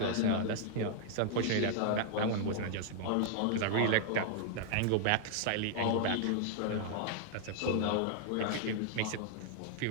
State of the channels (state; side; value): different; both; correlation -0.01